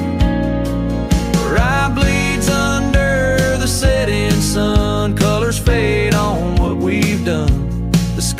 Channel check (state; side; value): identical; both; correlation 1.00